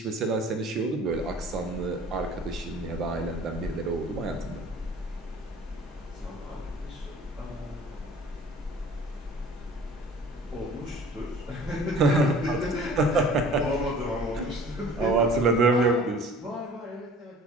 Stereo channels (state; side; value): normal; both; correlation 0.47